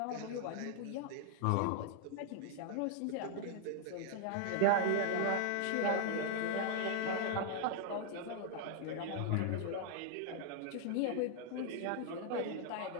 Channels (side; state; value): both; different; correlation 0.00